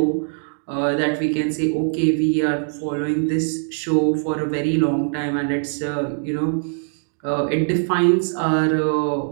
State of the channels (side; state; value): left; silent; digital silence